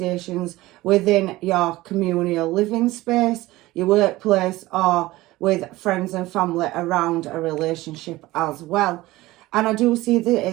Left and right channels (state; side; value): quieter; left; 18.4 dB